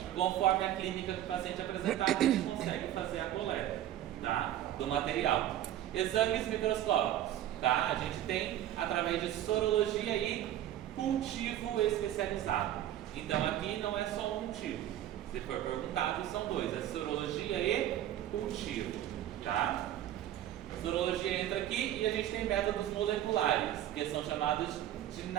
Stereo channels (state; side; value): quieter; left; 12.4 dB